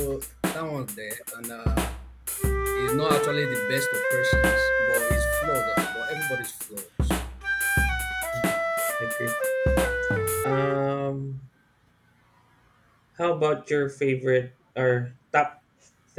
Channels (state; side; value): identical; both; correlation 1.00